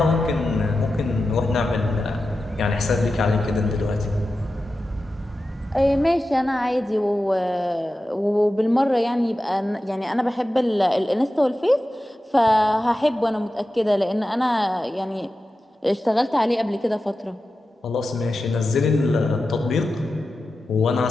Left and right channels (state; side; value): normal; both; correlation 0.93